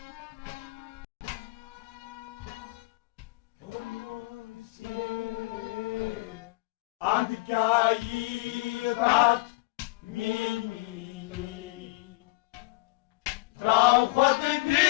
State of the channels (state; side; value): quieter; right; 23.6 dB